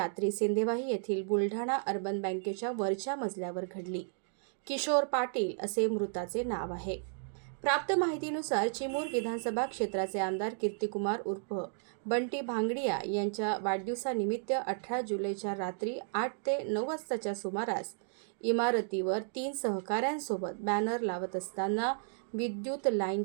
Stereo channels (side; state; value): left; silent; digital silence